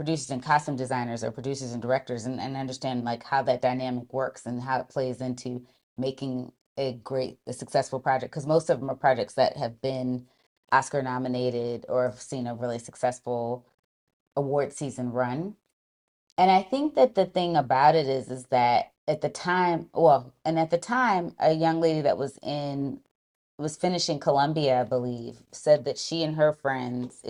and costume designers, or producers and directors, and understand like how that dynamic works and how it plays into making a successful project, because most of them are projects that have been Oscar nominated or have seen a really successful award season run. And I think that the thing about it is that at the time, a young lady that was finishing Columbia, I believe, said that she and her friends,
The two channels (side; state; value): both; identical; correlation 1.00